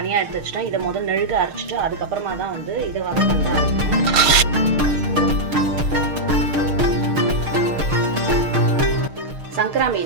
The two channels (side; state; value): left; late; 6.5 ms